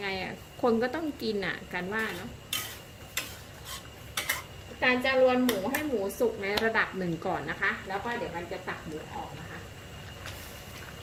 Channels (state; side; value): identical; both; correlation 1.00